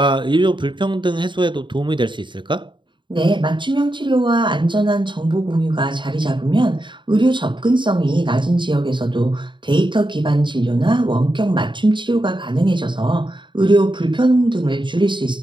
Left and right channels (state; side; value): late; left; 0.23 ms